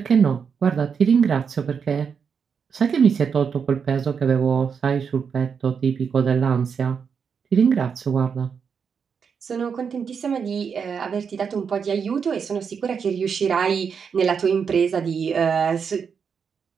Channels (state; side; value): quieter; left; 6.4 dB